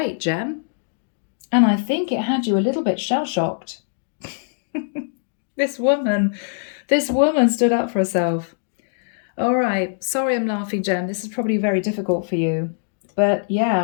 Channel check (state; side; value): silent; right; digital silence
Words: Gem. And I think it had you a little bit shell-shocked. This woman stood up for herself. All right, sorry I'm laughing, Gem. This is probably very difficult for you. But